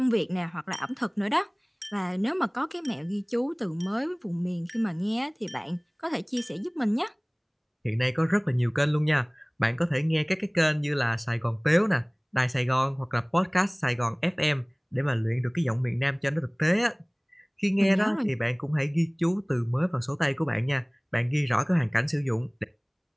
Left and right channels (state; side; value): identical; both; correlation 1.00